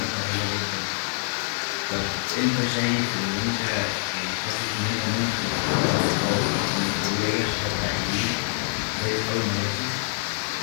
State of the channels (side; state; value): right; silent; digital silence